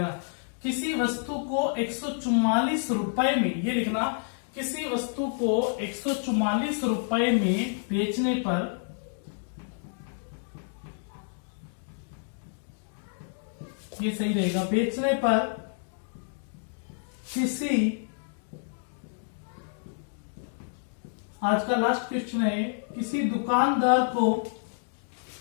किसी वस्तु को 144 रुपए में, ये लिखना, किसी वस्तु को 144 रुपए में बेचने पर ये सही रहेगा, बेचने पर किसी, आज का लास्ट क्वेश्चन है, किसी दुकानदार को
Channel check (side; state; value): right; silent; digital silence